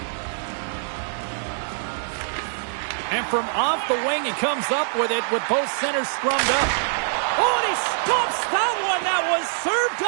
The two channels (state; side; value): silent; left; digital silence